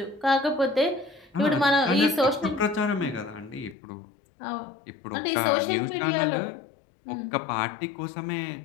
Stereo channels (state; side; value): drops out; right; at 3.8 s